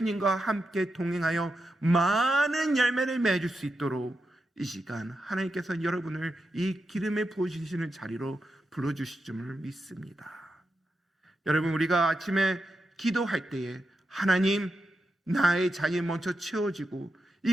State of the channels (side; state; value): both; normal; correlation 0.87